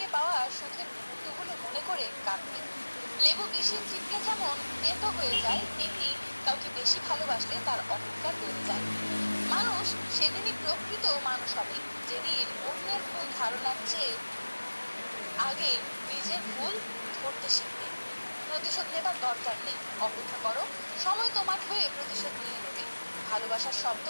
পাওয়া সুখের মুহূর্তগুলো মনে করে কাঁদবে। লেবু বেশি চিপলে যেমন তেতো হয়ে যায়, তেমনি কাউকে বেশি ভালোবাসলে তার অহংকার বেড়ে যায়। মানুষ সেদিনই প্রকৃত মানুষ হবে, যেদিন অন্যের ভুল ধারণার চেয়ে আগে নিজের ভুল ধরতে শিখবে। প্রতিশোধ নেবার দরকার নেই, অপেক্ষা করো, সময় তোমার হয়ে প্রতিশোধ নিয়ে নেবে। ভালোবাসার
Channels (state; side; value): inverted; both; correlation -1.00